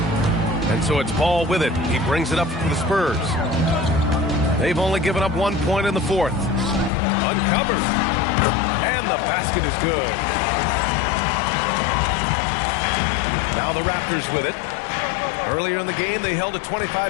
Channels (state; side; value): drops out; right; at 6.9 s